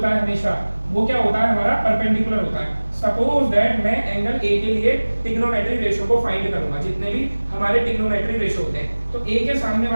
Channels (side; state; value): both; inverted; correlation -1.00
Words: है हमेशा वो क्या होता है हमारा परपेंडिकुलर होता है। सपोज दैट मैं एंगल ए के लिए ट्रिग्नोमेट्री रेशियो को फाइंड करूंगा, जितने भी हमारे ट्रिग्नोमेट्री रेशियो होते हैं तो ए के सामने